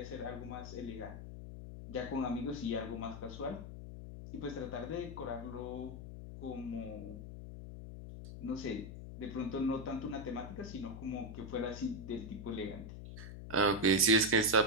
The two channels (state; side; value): noise; left; hum, 10 dB below the sound